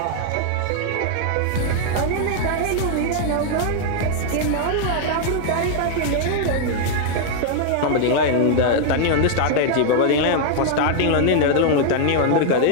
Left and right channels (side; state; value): both; different; correlation 0.00